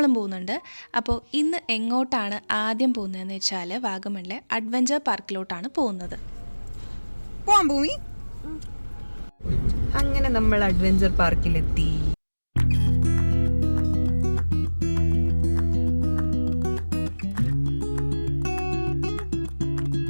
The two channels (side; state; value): both; inverted; correlation -1.00